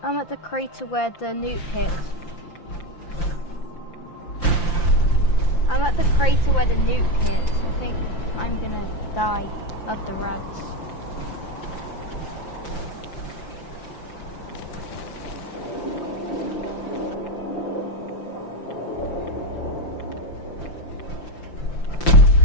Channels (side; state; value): right; late; 5.8 ms